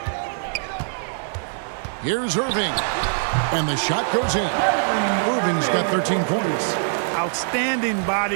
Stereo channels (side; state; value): left; silent; 56 dB below the other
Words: Here's Irving. And the shot goes in. Irving's got 13 points. Outstanding